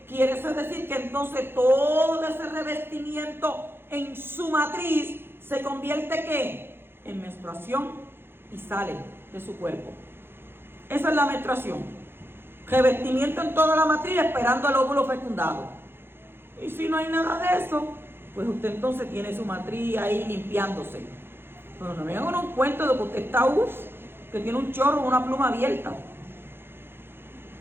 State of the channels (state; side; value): late; left; 0.11 ms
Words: quiere decir que entonces todo ese revestimiento en su matriz se convierte ¿qué? En menstruación y sale de su cuerpo. Esa es la menstruación. Revestimiento en toda la matriz esperando el óvulo fecundado. Y si no hay nada de eso, pues usted entonces tiene su matriz ahí limpiándose. Pero no me hagan un cuento de que usted está que tiene un chorro o una pluma abierta.